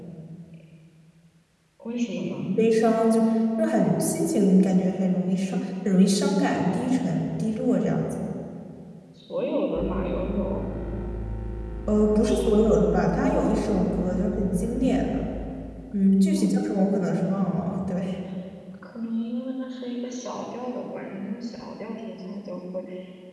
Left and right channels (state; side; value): identical; both; correlation 1.00